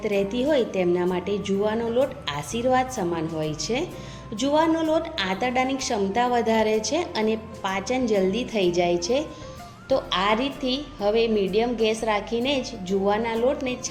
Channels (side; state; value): both; identical; correlation 1.00